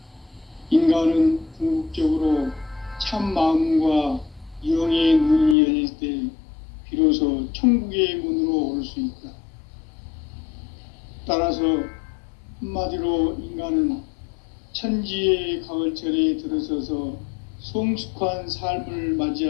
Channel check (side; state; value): right; drops out; at 5.6 s